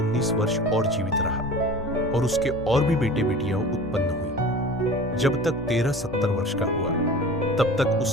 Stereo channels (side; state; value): both; normal; correlation 0.39